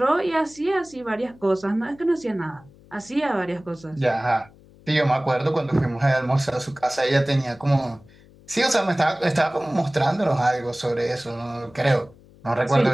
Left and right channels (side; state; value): left; noise; hum, 25 dB below the sound